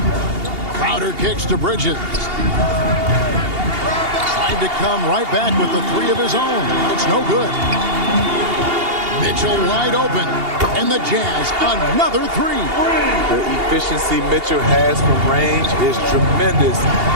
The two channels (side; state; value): left; late; 2.8 ms